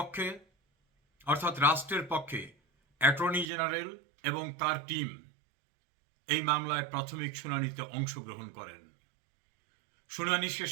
অর্থাৎ রাষ্ট্রের পক্ষে অ্যাটর্নি জেনারেল এবং তার টিম এই মামলায় প্রাথমিক শুনানিতে অংশগ্রহণ করেন। শুনানি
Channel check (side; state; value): left; drops out; at 3.5 s